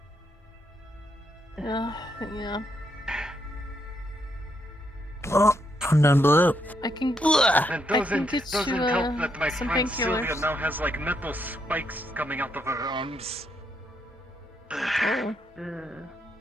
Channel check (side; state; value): both; normal; correlation 0.77